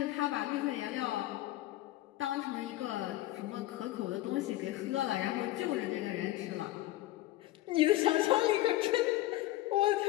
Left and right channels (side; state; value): right; quieter; 16.2 dB